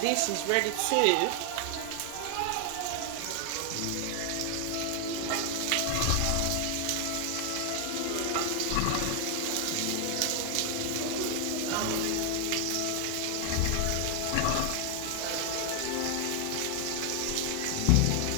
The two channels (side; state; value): both; different; correlation 0.00